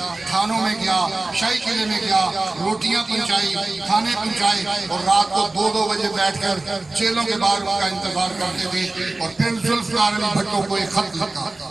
تھانوں میں گیا، شاہی قلعے میں گیا، روٹیاں پہنچائی، کھانے پہنچائے، اور رات کو 2-2 بجے بیٹھ کر جیلوں کے باہر ان کا انتظار کرتے تھے. اور پھر ذوالفقار علی بھٹو کو ایک خط لکھا.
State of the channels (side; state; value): left; quieter; 3.1 dB